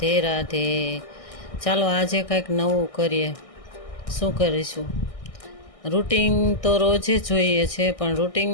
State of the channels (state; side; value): late; right; 1.6 ms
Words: રાધે. ચાલો આજે કંઈક નવું કરીએ. શું કરીશું? રૂટિન તો રોજે જોઈએ છે, પણ